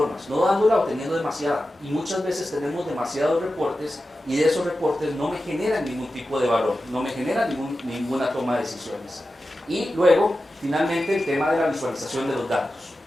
no dándola o teniendo demasiada. Y muchas veces tenemos demasiados reportes y de esos reportes no me generan ningún tipo de valor, no me generan ninguna toma de decisiones. Y luego, finalmente, el tema de la visualización de los datos.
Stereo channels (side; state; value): both; normal; correlation 0.93